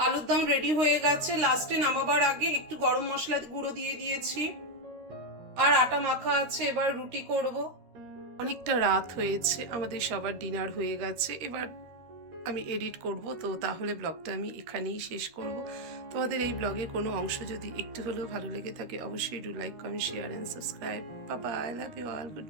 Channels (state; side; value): late; left; 13 ms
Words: আলুর দম রেডি হয়ে গেছে। লাস্টে নামাবার আগে একটু গরম মশলা গুঁড়ো দিয়ে দিয়েছি। আর আটা মাখা আছে, এবার রুটি করব। অনেকটা রাত হয়েছে, আমাদের সবার ডিনার হয়ে গেছে। এবার আমি এডিট করব, তো তাহলে ব্লগটা আমি এখানেই শেষ করব। তোমাদের এই ব্লগে কোনো অংশ যদি একটু হলেও ভালো লেগে থাকে অবশ্যই do like, comment, share and subscribe. Bye bye, love you all, good